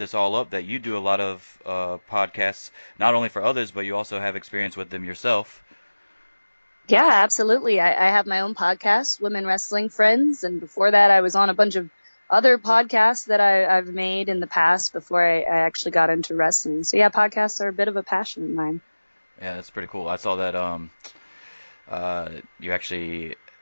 all up, that you do a lot of podcasts, not only for others, but you also have experience with them yourself. Yeah, absolutely. I have my own podcast, Women Wrestling Friends, and before that, I was on a bunch of other podcasts that I've made in the past before I actually got into wrestling. So yeah, podcasts are a bit of a passion of mine. Yeah, that's pretty cool. I saw that uh, you actually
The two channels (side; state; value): both; inverted; correlation -1.00